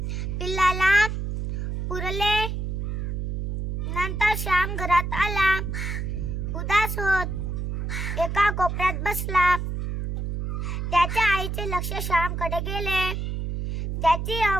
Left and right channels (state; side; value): noise; right; hum, 3 dB below the sound